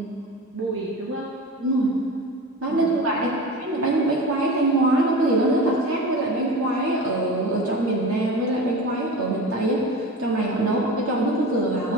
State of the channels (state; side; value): normal; both; correlation 0.31